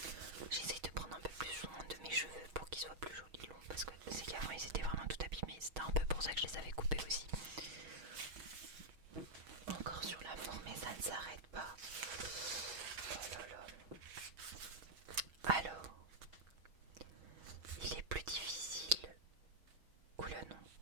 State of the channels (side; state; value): left; late; 6.3 ms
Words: J'essaye de prendre un peu plus soin de mes cheveux pour qu'ils soient plus jolis longs, parce que c'est qu'avant ils étaient vraiment tout abîmés. C'était un peu pour ça que je les avais coupés aussi. Encore sur l'amour, mais ça ne s'arrête pas. Oh là là. Alors, il est plus difficile. Oula non,